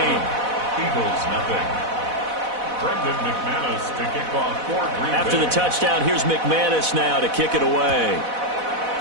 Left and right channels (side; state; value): left; late; 4.1 ms